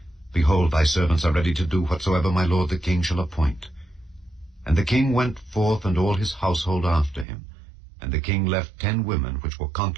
Behold, thy servants are ready to do whatsoever my lord the king shall appoint. And the king went forth, and all his household after him. And the king left 10 women which were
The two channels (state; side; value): drops out; left; at 7.2 s